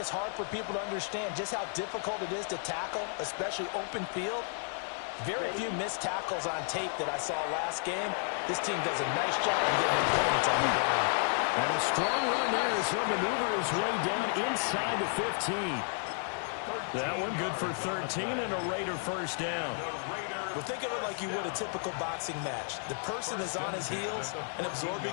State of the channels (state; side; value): silent; right; 56 dB below the other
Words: hard for people to understand just how difficult it is to tackle, especially open field. Very few missed tackles on tape that I saw last game. This team does a nice job of getting their opponents on the ground. And a strong run there as he'll maneuver his way down inside the 15. That one good for 13 and a Raider first down. Well, think of it like you would a typical boxing match. The person is on his heels and